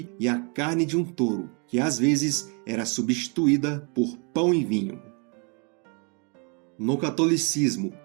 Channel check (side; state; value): left; quieter; 35.2 dB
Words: e a carne de um touro, que às vezes era substituída por pão e vinho. No catolicismo,